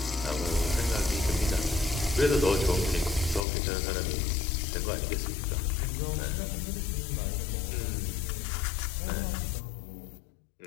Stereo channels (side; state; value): right; drops out; at 3.5 s